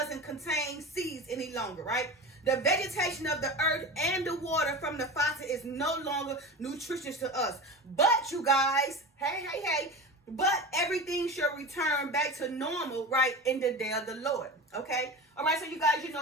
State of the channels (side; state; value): both; normal; correlation 0.29